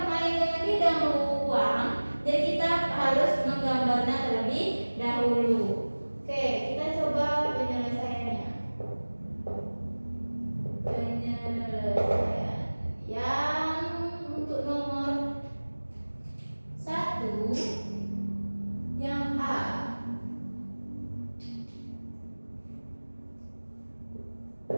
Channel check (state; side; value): inverted; both; correlation -1.00